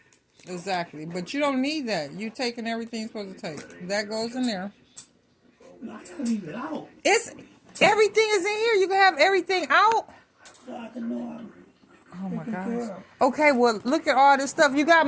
exactly. But you don't need that. You taking everything you're supposed to take. That goes in there. I gotta leave it out. Everything is in here. You can have everything out. So I can know I'm Oh my gosh. Okay, well, look at all this stuff. You got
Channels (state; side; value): identical; both; correlation 1.00